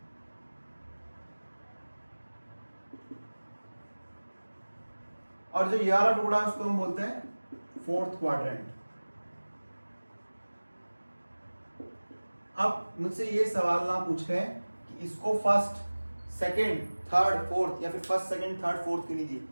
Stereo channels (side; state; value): both; inverted; correlation -1.00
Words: और जो ये वाला टुकड़ा है उसको हम बोलते हैं फोर्थ क्वाड्रेंट। अब मुझसे ये सवाल ना पूछे कि इसको फर्स्ट, सेकंड, थर्ड, फोर्थ या फिर फर्स्ट, सेकंड, थर्ड, फोर्थ क्यों नहीं दी,